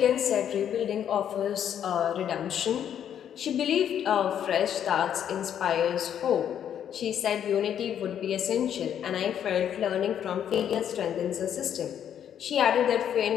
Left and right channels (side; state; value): right; quieter; 9.4 dB